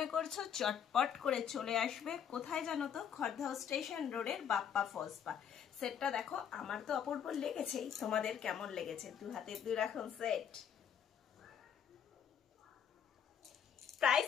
করছো চটপট করে চলে আসবে। কোথায় জানো তো? খড়দহ স্টেশন রোডের বাপ্পা ফলসপা। সেটটা দেখো, আমার তো অপূর্ব লেগেছেই, তোমাদের কেমন লেগেছে? দু হাতে দুই রকম সেট, প্রাইস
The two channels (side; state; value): right; quieter; 8.4 dB